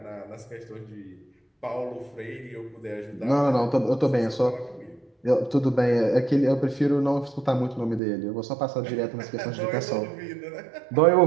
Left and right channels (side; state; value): left; drops out; at 8.0 s